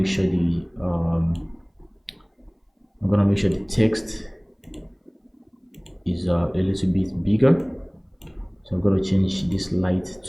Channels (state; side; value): identical; both; correlation 1.00